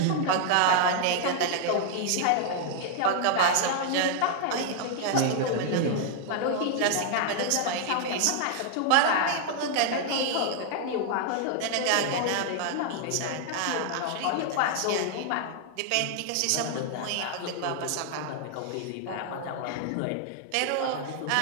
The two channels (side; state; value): both; different; correlation 0.00